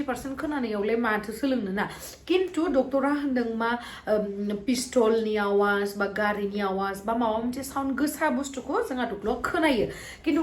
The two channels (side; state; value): both; identical; correlation 1.00